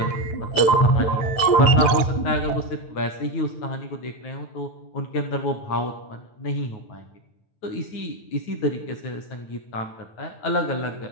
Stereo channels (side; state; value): right; late; 9.3 ms